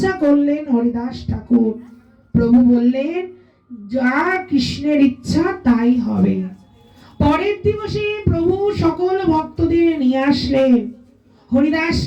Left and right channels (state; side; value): identical; both; correlation 1.00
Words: করলেন হরিদাস ঠাকুর। প্রভু বললেন, যা কৃষ্ণের ইচ্ছা তাই হবে। পরের দিবসে প্রভু সকল ভক্তদের নিয়ে আসলেন।